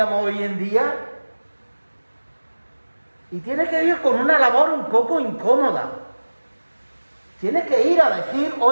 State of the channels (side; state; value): both; inverted; correlation -1.00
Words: hoy en día, y tiene que ir con una labor un poco incómoda. Tiene que ir a decir,